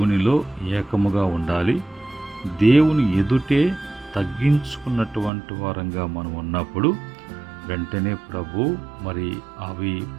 ఏకముగా ఉండాలి. దేవుని ఎదుటే తగ్గించుకున్నటువంటి వారంగా మనం ఉన్నప్పుడు వెంటనే ప్రభు అవి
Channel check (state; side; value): drops out; left; at 5.3 s